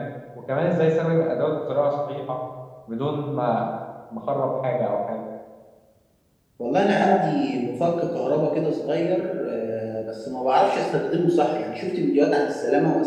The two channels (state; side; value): identical; both; correlation 1.00